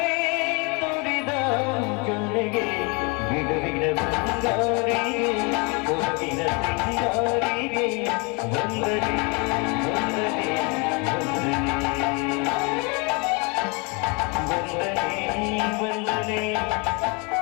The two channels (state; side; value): quieter; right; 31.0 dB